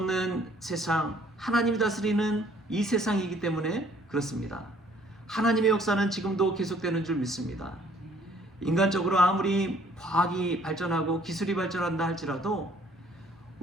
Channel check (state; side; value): normal; both; correlation 0.60